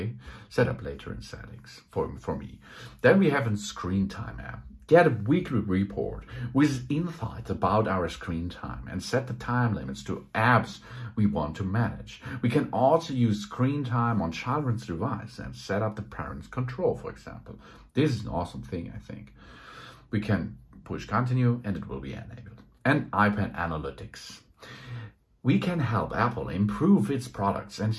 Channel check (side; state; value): both; identical; correlation 1.00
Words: Set up later in settings for me. Then we have a screen time app. Get a weekly report with insights about our screen time and set the time limits to apps we want to manage. We can also use screen time on children's device and set up the parent's control, for example. This is an awesome thing, I think. We can push continue and it will be enabled. And iPad Analytics. We can help Apple improve its products and